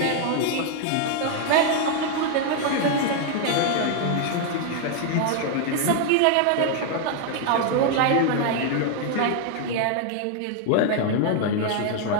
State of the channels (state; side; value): different; both; correlation 0.00